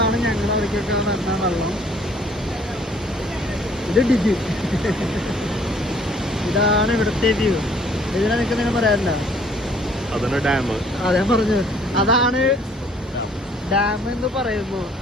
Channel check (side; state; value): both; normal; correlation 0.59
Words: ഞങ്ങൾ അവിടേക്കൊക്കെ വരുന്ന വെള്ളം. ഇത് ഡിജി. ഇതാണ് ഇവിടുത്തെ വ്യൂ. ഇതിനെ നിങ്ങൾക്ക് നിങ്ങൾ പറയാറില്ല. അതാണ് ഡാം. അതെ പറഞ്ഞു. അതാണ് ഡാം എന്ന് പറയുന്നു.